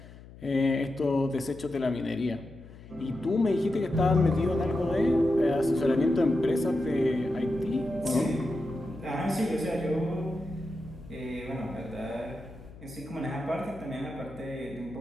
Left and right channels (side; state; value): left; noise; hum, 18 dB below the sound